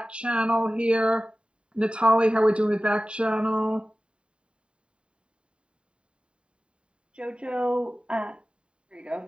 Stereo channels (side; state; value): left; late; 0.054 ms